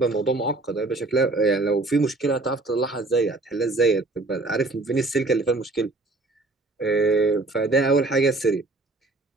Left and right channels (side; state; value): left; quieter; 3.1 dB